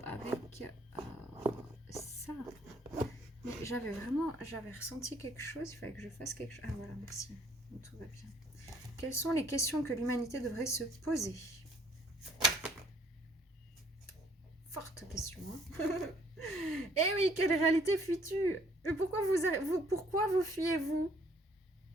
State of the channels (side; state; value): both; normal; correlation 0.62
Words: avec ça. J'avais ressenti quelque chose. Il fallait que je fasse quelque chose. Ah voilà, merci. Donc, tout va bien. Quelles sont les questions que l'humanité devrait se poser? Forte question. Hein. Eh oui, quelle réalité fuis-tu? Pourquoi vous fuyez-vous?